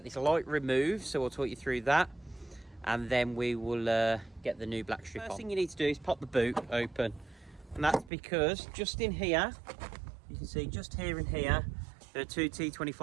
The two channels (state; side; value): drops out; left; at 8.1 s